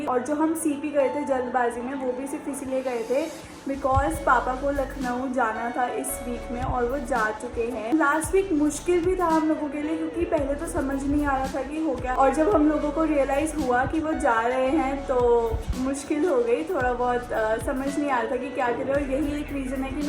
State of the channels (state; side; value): identical; both; correlation 1.00